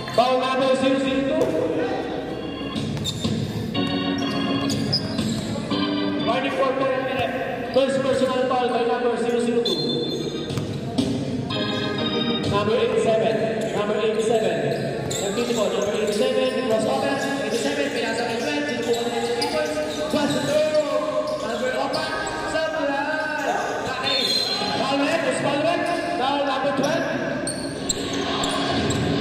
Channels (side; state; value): both; identical; correlation 1.00